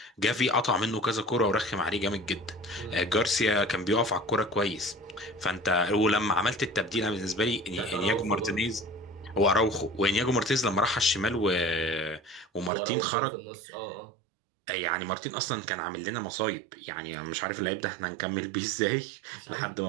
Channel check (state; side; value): drops out; left; at 12.7 s